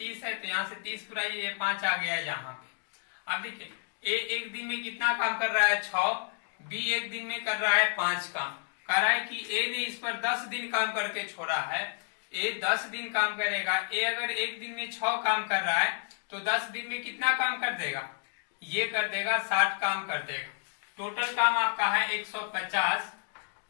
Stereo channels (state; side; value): silent; right; digital silence